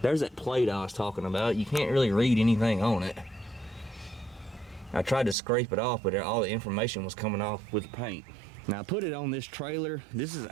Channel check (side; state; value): left; drops out; at 5.4 s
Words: There's that plate I was talking about. You can't really read anything on it. I tried to scrape it off, but all the information was coming off with paint. Now I put it on this trailer. This is